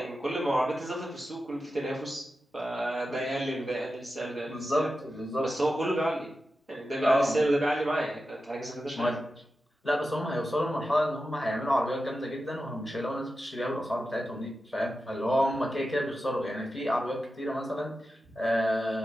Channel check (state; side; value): normal; both; correlation 0.91